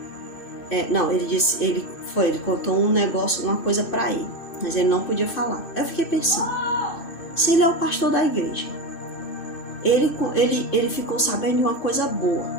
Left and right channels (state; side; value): late; right; 2.6 ms